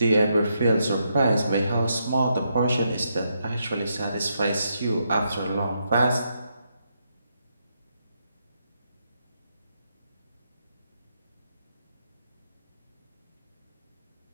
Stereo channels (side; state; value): both; inverted; correlation -0.80